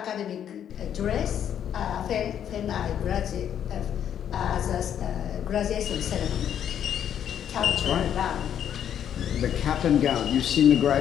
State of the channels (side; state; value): right; quieter; 9.5 dB